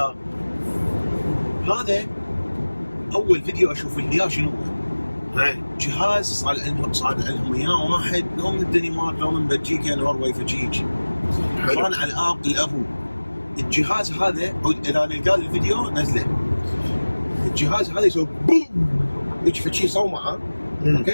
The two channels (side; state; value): both; inverted; correlation -1.00